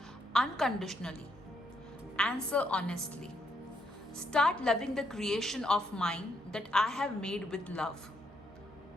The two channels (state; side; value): normal; both; correlation 0.76